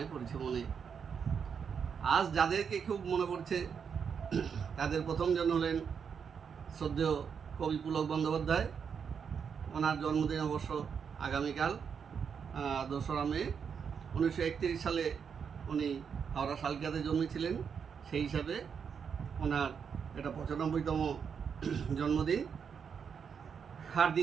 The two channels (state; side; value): quieter; left; 6.8 dB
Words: পড়ছে মনে। আজ যাদেরকে খুব মনে পড়ছে তাদের প্রথমজন হলেন শ্রদ্ধেয় কবি পুলক বন্দ্যোপাধ্যায়। ওনার জন্মদিন অবশ্য আগামীকাল 2রা মে। 1931 সালে উনি হাওড়া শালকিয়াতে জন্মেছিলেন। সেই হিসাবে ওনার এটা 95তম জন্মদিন। আর